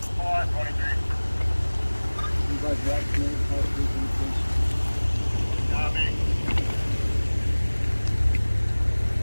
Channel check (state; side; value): inverted; both; correlation -1.00